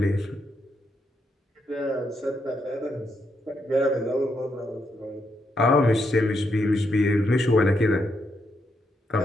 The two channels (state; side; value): normal; both; correlation 0.80